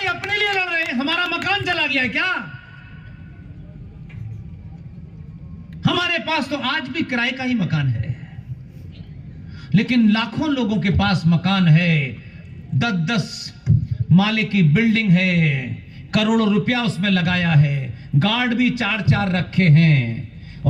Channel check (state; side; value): identical; both; correlation 1.00